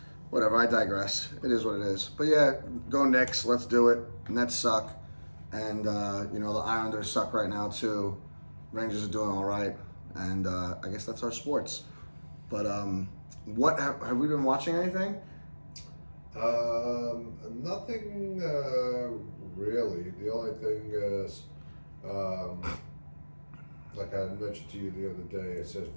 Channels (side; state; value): both; inverted; correlation -1.00